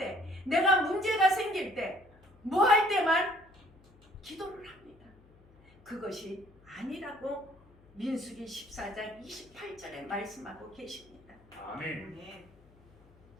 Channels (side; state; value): left; noise; hum, 27 dB below the sound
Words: 내가 문제가 생길 때, 뭐 할 때만 기도를 합니다. 그것이 아니라고 민수기 14장 28절에 말씀하고 계십니다. 아멘.